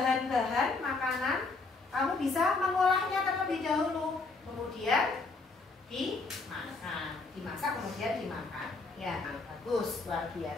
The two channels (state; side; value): quieter; right; 3.9 dB